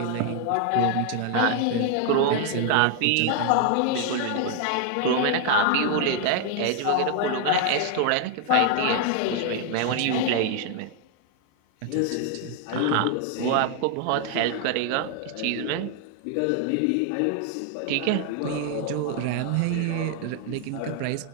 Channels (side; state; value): both; different; correlation 0.01